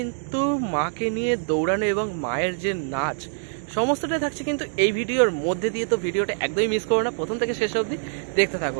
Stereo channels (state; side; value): silent; left; 59 dB below the other